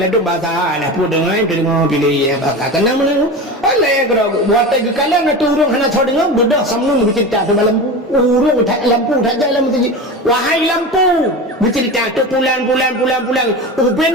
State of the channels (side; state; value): both; normal; correlation 0.27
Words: do bahasa lah pu dengar pilih ya bahasa kena mana. Oleh gerak watai ke kalan tu orang hana tahu dengar bedah Samnun bercerita sebab lampu. Urung tak lampu tak jalan masjid. Wahai lampu, bercerita tu pulang.